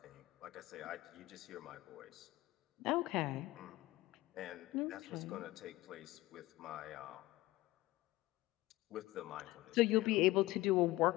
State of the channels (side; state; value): right; quieter; 18.4 dB